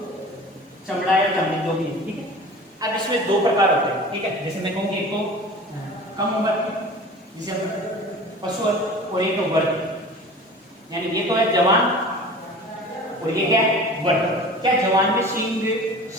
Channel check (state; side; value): normal; both; correlation 0.40